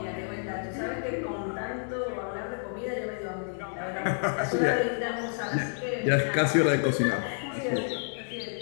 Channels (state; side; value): silent; right; 58 dB below the other